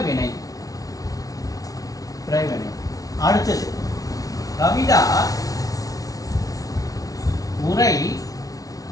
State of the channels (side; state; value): right; late; 0.18 ms